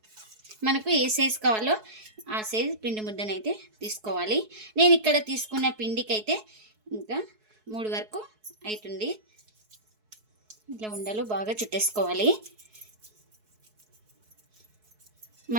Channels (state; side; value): late; left; 4.7 ms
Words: మనకు ఏ సైజు కావాలో ఆ సైజు పిండి ముద్దనైతే తీసుకోవాలి. నేను ఇక్కడ తీసుకున్న పిండికైతే ఇంకా 3 వరకు అవుతుంది. ఇట్లా ఉండలు బాగా చుట్టేసుకోవాలి.